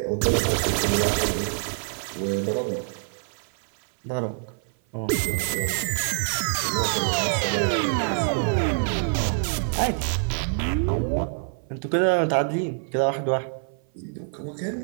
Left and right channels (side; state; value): left; silent; 56 dB below the other